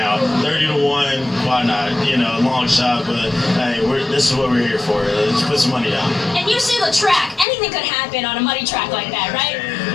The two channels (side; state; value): right; drops out; at 7.5 s